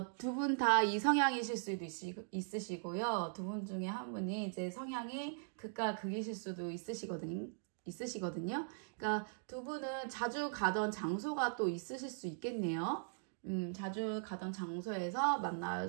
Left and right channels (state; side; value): silent; left; digital silence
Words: 두 분 다 이성향이실 수도 있으시고요. 두 분 중에 한 분이 이제 성향이 극과 극이실 수도 있으시거든요. 그러니까 두 분은 자주 가던 장소가 또 있으실 수 있겠네요. 자주 가던 장소에서